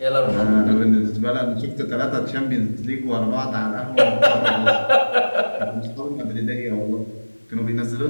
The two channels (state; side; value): inverted; both; correlation -1.00